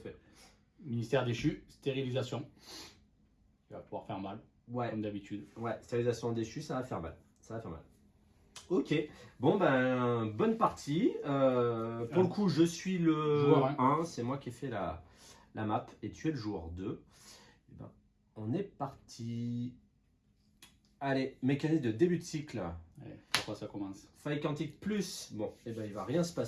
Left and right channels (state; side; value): identical; both; correlation 1.00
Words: Ministère déchu, stérilisation. Il va pouvoir faire mal, comme d'habitude. Ouais, stérilisation déchue, ça va faire mal. Ça va faire mal. Ok, bon ben, bonne partie. Pour le coup, je suis le joueur 1, c'est moi qui ai fait la map, et tu es le joueur 2. Et ben, on est parti. Allez, mécanisme de début de cycle. Allez, pourquoi ça commence? Faille quantique plus. Bon, et ben il va rien se